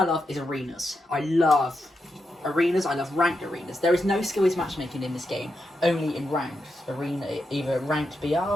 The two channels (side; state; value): both; normal; correlation 0.85